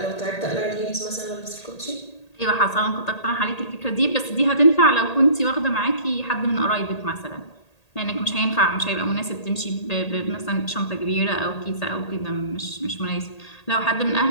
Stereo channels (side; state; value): right; late; 1.8 ms